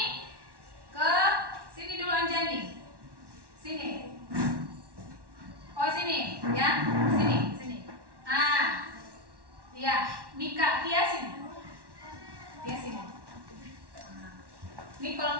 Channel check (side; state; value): left; late; 1.1 ms